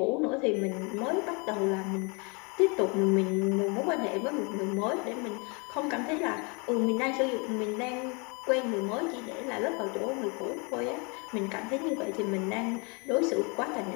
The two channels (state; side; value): quieter; right; 32.0 dB